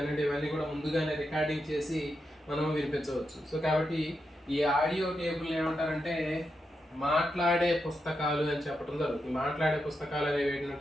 ఇవన్నీ కూడా ముందుగానే రికార్డింగ్ చేసి మనం వినిపించవచ్చు. సో కాబట్టి ఈ ఆడియో టేబుల్ ఏమంటారంటే మాట్లాడే పుస్తకాలు అని చెప్పడం జరుగుతుంది. మాట్లాడే పుస్తకాలు అనేవి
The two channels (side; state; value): both; normal; correlation 0.86